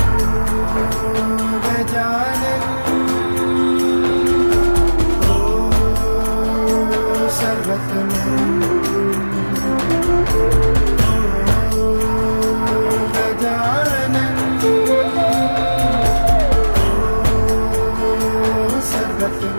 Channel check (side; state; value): both; inverted; correlation -1.00